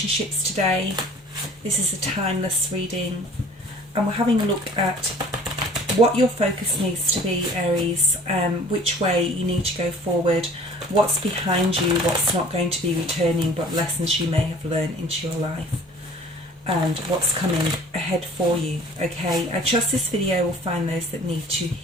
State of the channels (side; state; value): both; normal; correlation 0.48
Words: today. This is a timeless reading and we're having a look at what your focus needs to be, Aries, which way you need to go forward, what's behind you, what's not going to be returning, but lessons you may have learned into your life, and what's coming ahead for you. Okay, I trust this video will find those that need to